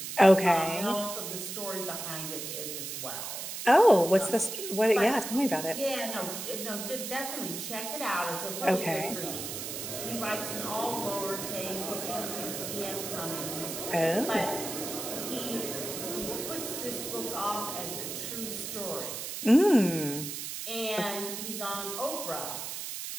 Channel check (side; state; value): right; noise; hiss, 6 dB below the sound